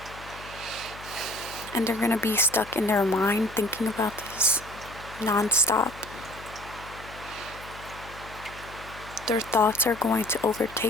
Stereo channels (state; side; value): noise; left; hum, 17 dB below the sound